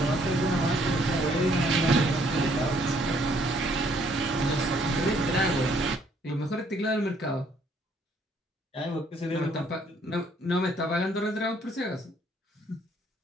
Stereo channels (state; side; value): normal; both; correlation 0.65